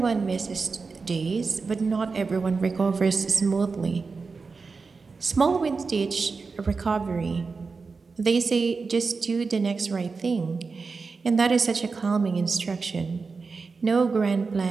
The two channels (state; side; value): quieter; left; 4.5 dB